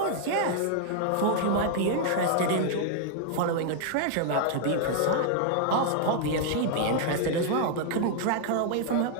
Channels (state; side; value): different; both; correlation 0.00